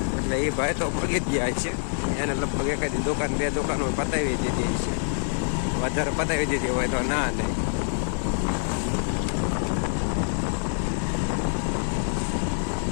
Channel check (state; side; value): silent; right; 61 dB below the other